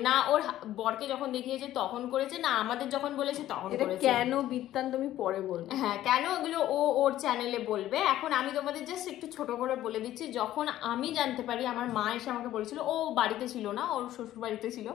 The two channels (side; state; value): right; quieter; 13.5 dB